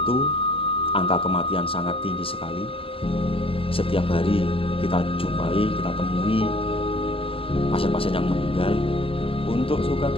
angka kematian sangat tinggi sekali. Setiap hari kita jumpai, kita temui pasien-pasien yang meninggal. Untuk suka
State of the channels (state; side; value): late; right; 0.27 ms